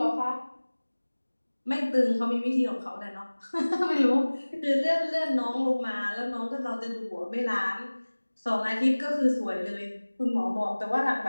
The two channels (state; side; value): inverted; both; correlation -1.00